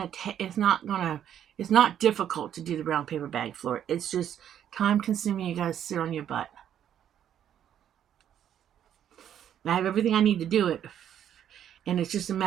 It's not difficult to do the brown paper bag floor. It's just time consuming. You gotta sit on your butt. I have everything I need to do it, and it's just a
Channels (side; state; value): left; quieter; 9.9 dB